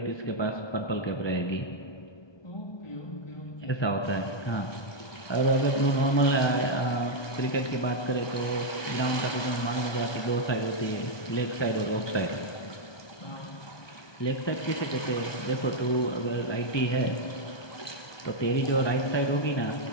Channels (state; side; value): late; right; 1.2 ms